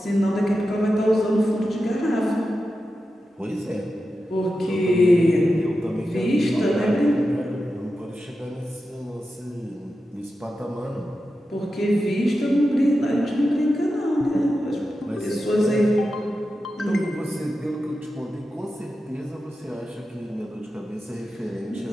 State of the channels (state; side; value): normal; both; correlation 0.91